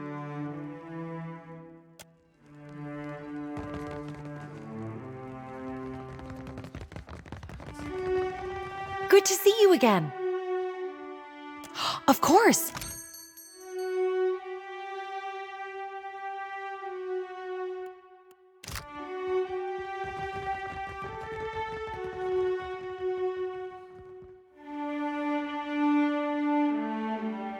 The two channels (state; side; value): identical; both; correlation 1.00